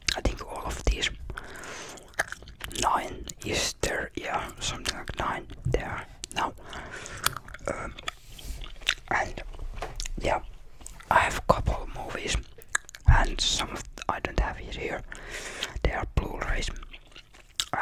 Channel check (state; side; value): identical; both; correlation 1.00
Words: I think all of these 9 is there, yeah, something like 9 there now. And yeah, I have a couple movies, and some of I don't have it here. They are Blu-rays,